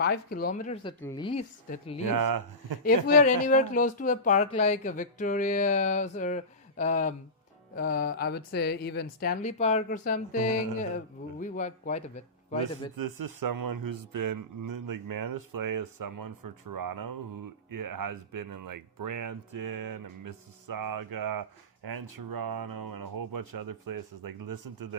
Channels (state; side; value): normal; both; correlation -0.19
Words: kilometers at least. Yeah. If we are anywhere close to a park like Victoria or I would say even Stanley Park or something, we walk quite a bit. This is someone who's been like Manus Play is someone from Toronto who has been in like Brampton and Mississauga and Toronto and a whole bunch of other places. Like, listen to